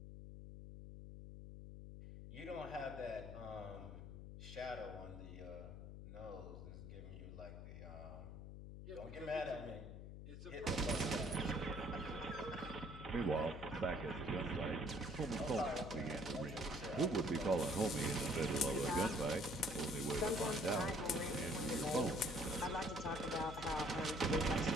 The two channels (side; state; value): left; noise; hum, 10 dB below the sound